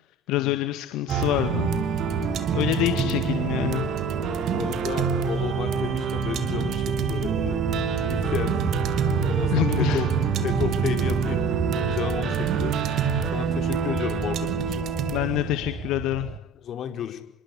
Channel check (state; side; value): normal; both; correlation 0.43